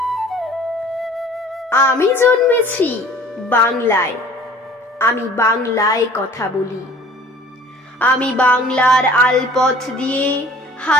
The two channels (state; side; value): normal; both; correlation 0.49